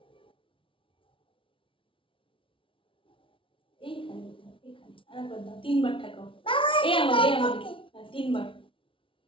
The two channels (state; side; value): late; right; 0.25 ms